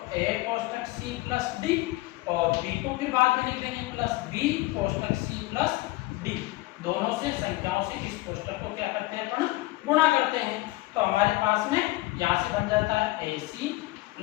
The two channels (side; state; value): right; quieter; 19.7 dB